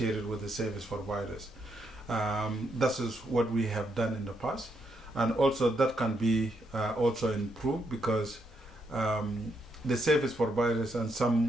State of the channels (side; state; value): both; normal; correlation 0.78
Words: it with the service providers. That is what we have done in the past, and also that can be also improved because the service providers and